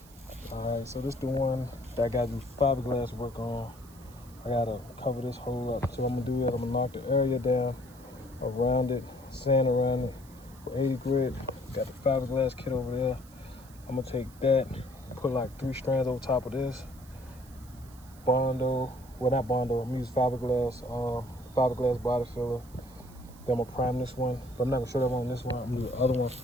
All right, so this is the one that I gotta do fiberglass work on. I gotta cover this hole up. So I'm gonna do that. I'm gonna knock the area down around it, sand around it with 80 grit. Got the fiberglass kit over there. I'm gonna take that, put like 3 strands over top of this. Bondo, well not Bondo, I'm gonna use fiberglass body filler. Then I'm gonna prime this one, but I'm not gonna show that one on this one. I'm gonna do the other one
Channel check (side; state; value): right; noise; hiss, 24 dB below the sound